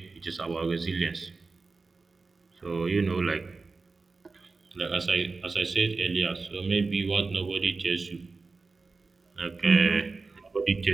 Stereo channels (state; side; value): quieter; left; 4.0 dB